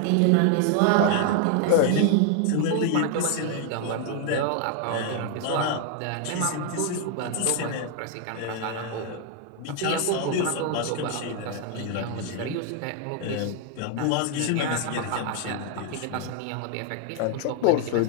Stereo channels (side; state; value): both; different; correlation 0.00